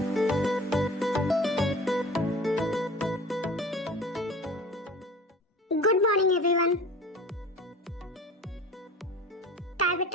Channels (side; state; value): both; normal; correlation 0.39